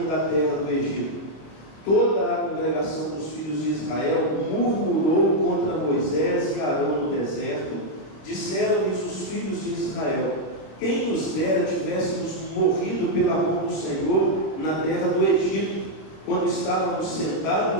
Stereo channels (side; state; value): right; late; 26 ms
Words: da terra do Egito. Toda a congregação dos filhos de Israel murmurou contra Moisés e Arão no deserto. Disseram-lhes os filhos de Israel: quem nos dera tivéssemos morrido pela mão do Senhor na terra do Egito, quando estávamos